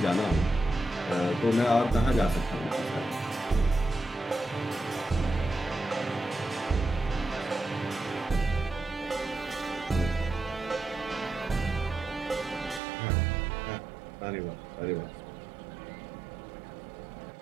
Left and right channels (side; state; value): left; drops out; at 12.8 s